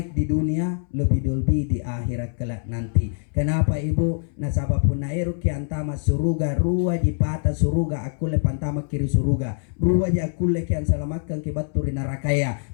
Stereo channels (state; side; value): silent; right; 63 dB below the other